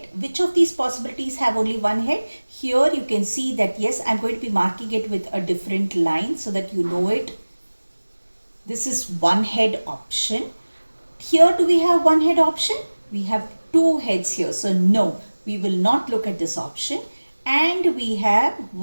Which of these possibilities have only one head? Here you can see that yes, I'm going to be marking it with a different line so that you know it. This is one head option. Here do we have one head option? We have two heads here. So no, we will not look at this option. And we have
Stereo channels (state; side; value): inverted; both; correlation -1.00